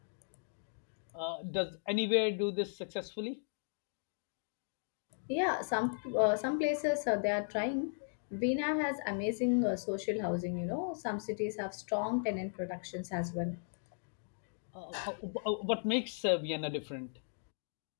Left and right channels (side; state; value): right; silent; digital silence